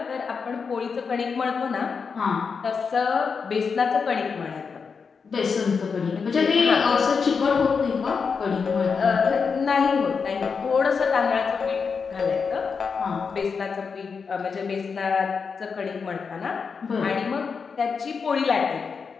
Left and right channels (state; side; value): quieter; right; 5.5 dB